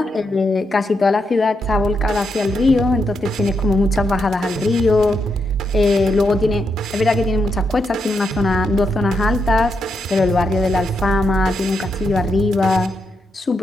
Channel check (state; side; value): normal; both; correlation 0.82